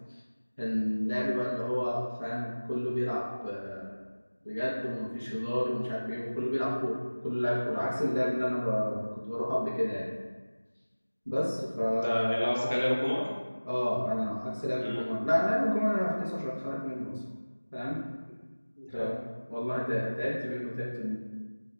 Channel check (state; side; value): inverted; both; correlation -1.00